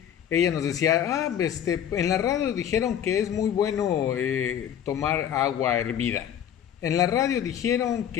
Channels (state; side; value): quieter; right; 9.6 dB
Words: ella nos decía, en la radio dijeron que es muy bueno tomar agua hervida. En la radio dijeron